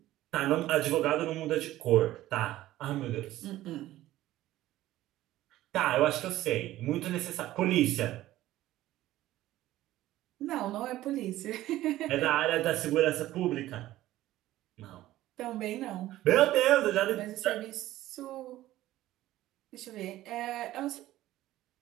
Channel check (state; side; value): quieter; left; 15.1 dB